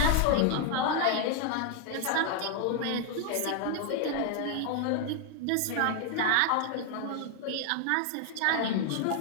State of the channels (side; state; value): both; different; correlation 0.00